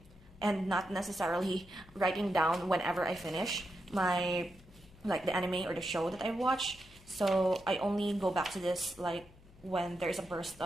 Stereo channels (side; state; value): left; noise; hum, 24 dB below the sound